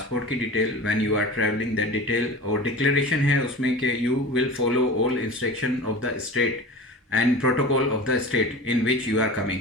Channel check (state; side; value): normal; both; correlation 0.34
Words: की detail, when you are travelling that detail, और डिक्लेरेशन है उसमें कि you will follow all instruction of the state and protocol of the state in which you are